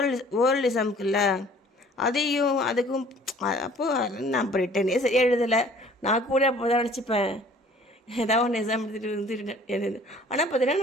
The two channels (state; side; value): normal; both; correlation 0.53